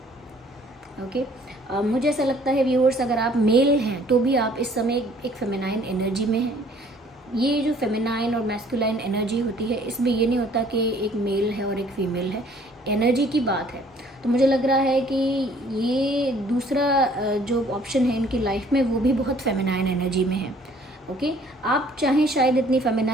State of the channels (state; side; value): normal; both; correlation 0.57